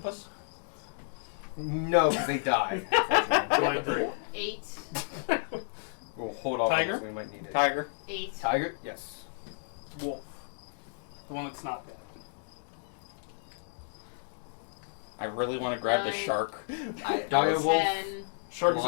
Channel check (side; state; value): right; silent; digital silence